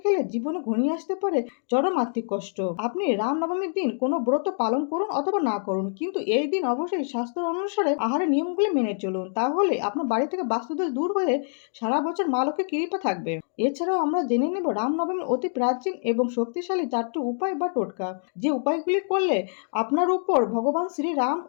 খেলে জীবনে ঘনিয়ে আসতে পারে চরম আর্থিক কষ্ট। আপনি রামনবমীর দিন কোনো ব্রত পালন করুন অথবা না করুন, কিন্তু এই দিন অবশ্যই শাস্ত্র অনুসারে আহারের নিয়মগুলি মেনে চলুন। তাহলে আপনার বাড়ি থেকে বাস্তুদোষ দূর হয়ে সারা বছর মা লক্ষ্মীর কৃপা থাকবে। এছাড়াও আমরা জেনে নেব রামনবমীর অতি প্রাচীন এবং শক্তিশালী 4টি উপায় বা টোটকা, যে উপায়গুলি করলে আপনার উপর ভগবান শ্রী রাম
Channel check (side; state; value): right; silent; 60 dB below the other